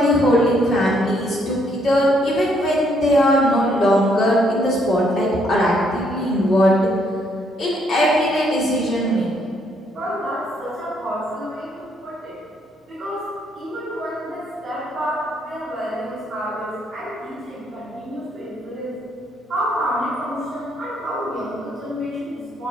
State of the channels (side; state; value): both; normal; correlation 0.70